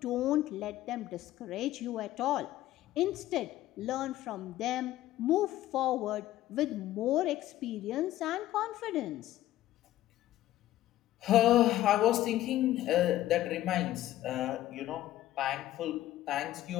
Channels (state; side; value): quieter; right; 14.3 dB